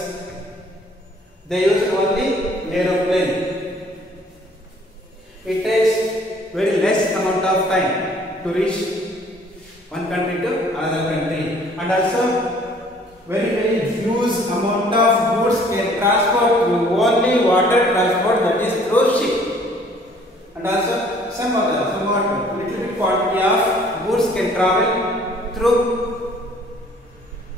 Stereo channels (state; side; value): normal; both; correlation 0.57